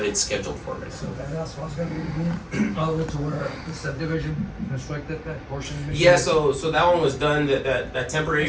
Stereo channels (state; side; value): identical; both; correlation 1.00